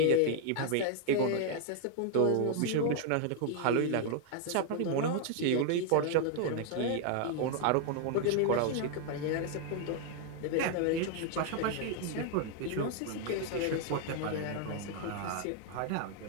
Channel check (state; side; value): different; both; correlation 0.00